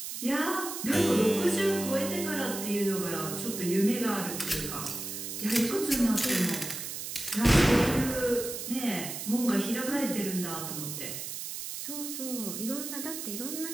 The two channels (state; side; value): noise; right; hiss, 6 dB below the sound